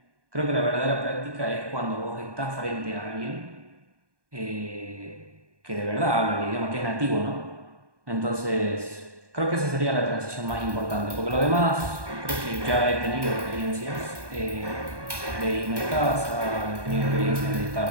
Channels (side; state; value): left; late; 1.2 ms